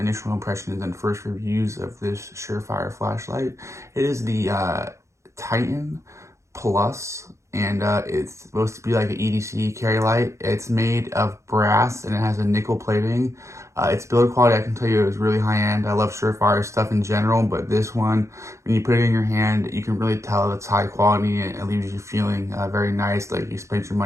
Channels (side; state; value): left; late; 0.14 ms